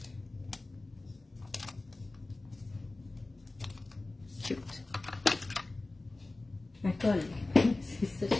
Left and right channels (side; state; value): right; quieter; 3.1 dB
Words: Cute. La colle. C'est ça que